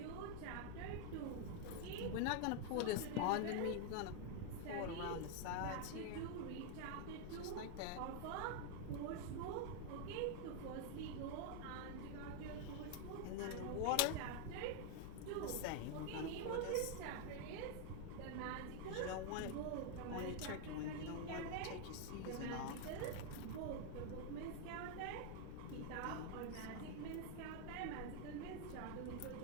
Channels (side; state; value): both; different; correlation 0.01